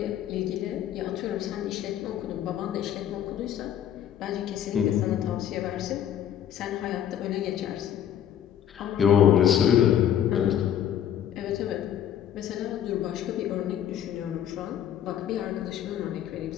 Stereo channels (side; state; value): right; quieter; 10.2 dB